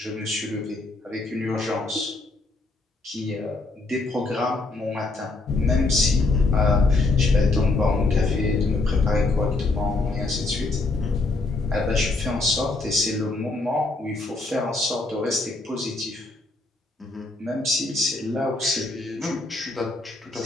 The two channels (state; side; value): quieter; right; 3.2 dB